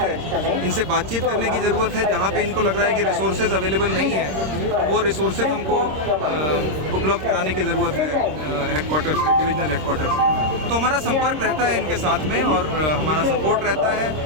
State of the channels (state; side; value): late; left; 26 ms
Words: इनसे बातचीत करने की ज़रूरत है। जहाँ पे इनको लग रहा है कि रिसोर्सेज अवेलेबल नहीं है, वो रिसोर्सेज हमको उपलब्ध कराने की ज़रूरत है हेडक्वार्टर से, डिविजनल हेडक्वार्टर से। तो हमारा संपर्क रहता है इनके साथ में और हमारा सपोर्ट रहता